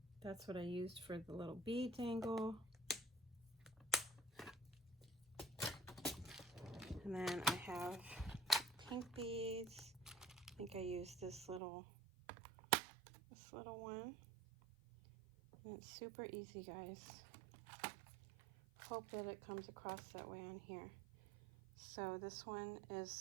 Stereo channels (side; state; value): left; drops out; at 11.6 s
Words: That's what I used for the little bead dangle. And then I have pink beads. I think I used this little one. And it's super easy, guys. Hope that it comes across that way on here. So this one is